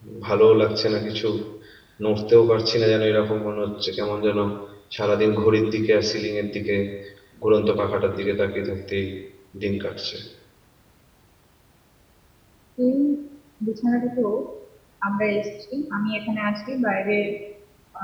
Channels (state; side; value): identical; both; correlation 1.00